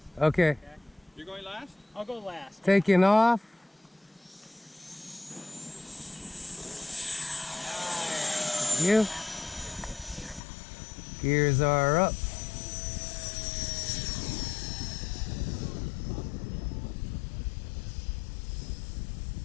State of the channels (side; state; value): right; drops out; at 10.4 s